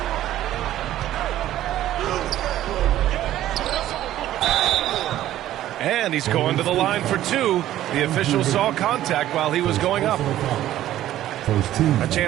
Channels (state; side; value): quieter; left; 13.3 dB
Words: And he's going to the line for 2. The official saw contact while he was going up. A